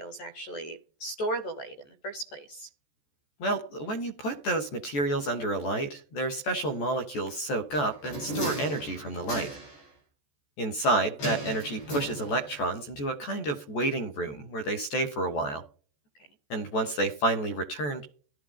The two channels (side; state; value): right; late; 14 ms